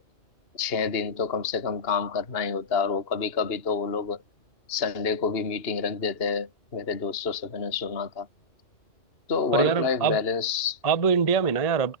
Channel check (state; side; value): late; right; 2.8 ms